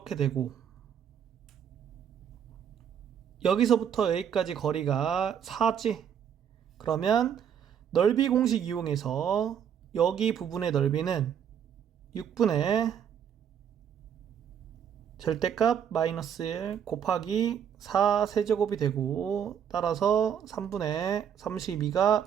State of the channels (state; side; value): quieter; left; 8.5 dB